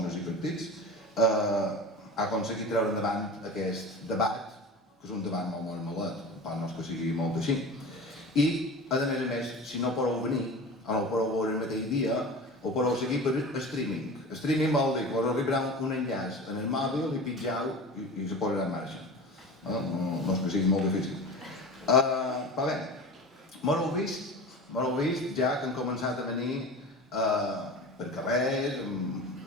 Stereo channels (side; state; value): both; normal; correlation 0.33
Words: i partits, ha aconseguit treure endavant aquest debat, que és un debat molt malet, per no és que sigui molt així. I, a més, si no podeu venir, o no ho podeu veure el mateix dia, ho podeu seguir per streaming. Streaming vol dir que us arribarà un enllaç en el mòbil i pitjau i se posarà en marxa. No és que sigui molt difícil. Però bé, m'ho heu vist ja que han començat a venir per carrers,